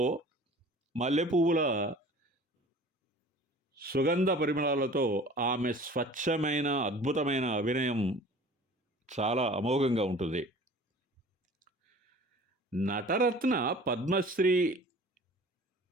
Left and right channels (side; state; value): both; normal; correlation 0.45